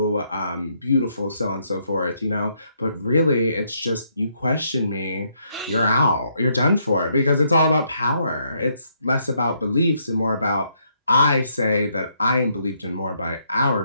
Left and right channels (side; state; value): both; inverted; correlation -0.73